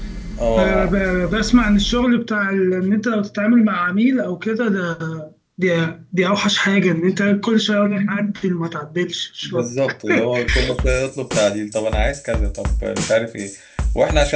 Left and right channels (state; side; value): identical; both; correlation 1.00